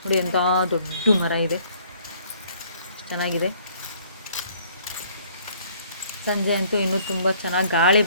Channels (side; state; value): both; inverted; correlation -0.60